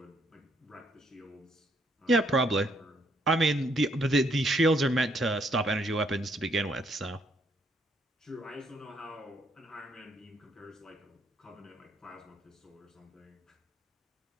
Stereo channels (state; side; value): normal; both; correlation 0.70